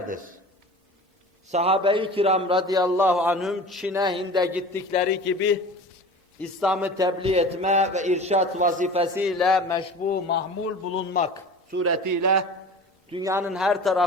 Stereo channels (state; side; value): normal; both; correlation 0.37